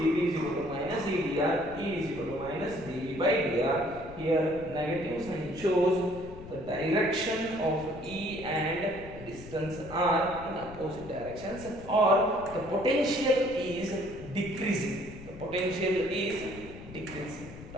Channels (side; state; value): left; noise; rumble, 15 dB below the sound